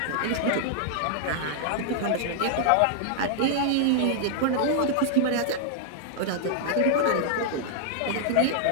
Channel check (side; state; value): both; different; correlation -0.01